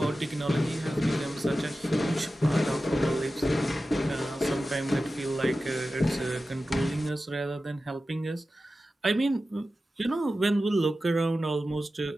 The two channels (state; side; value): normal; both; correlation 0.94